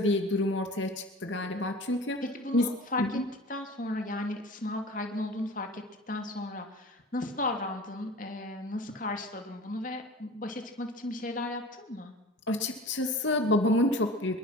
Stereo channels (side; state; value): both; normal; correlation 0.39